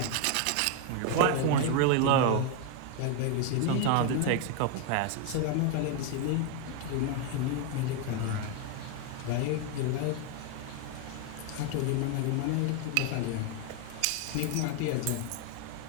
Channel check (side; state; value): both; different; correlation 0.01